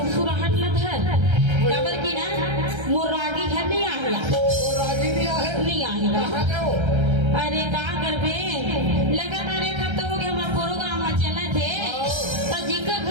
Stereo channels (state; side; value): late; left; 1.3 ms